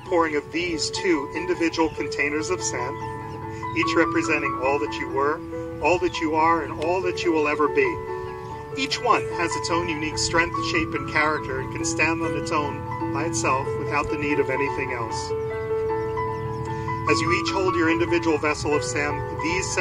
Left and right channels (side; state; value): both; identical; correlation 1.00